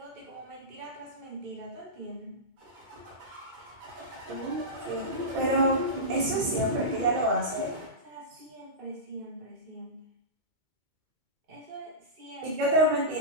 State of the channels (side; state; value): left; late; 2.3 ms